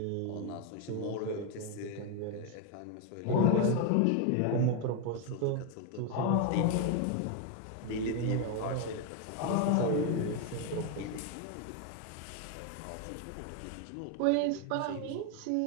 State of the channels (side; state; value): both; different; correlation 0.01